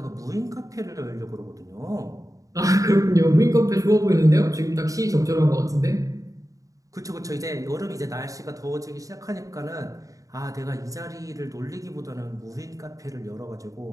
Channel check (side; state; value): left; late; 0.16 ms